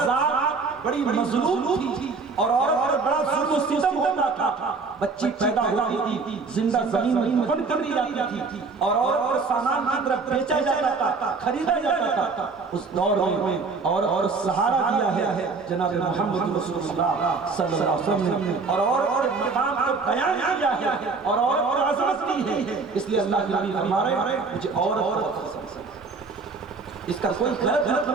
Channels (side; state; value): left; quieter; 4.4 dB